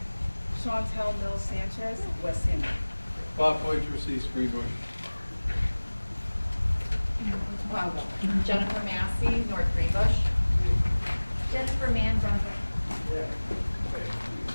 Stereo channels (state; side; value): inverted; both; correlation -1.00